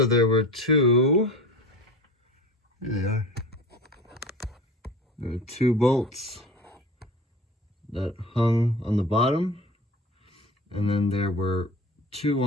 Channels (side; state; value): both; normal; correlation 0.36